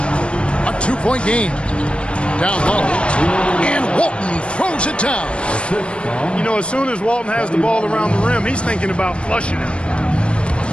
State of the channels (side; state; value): right; late; 0.058 ms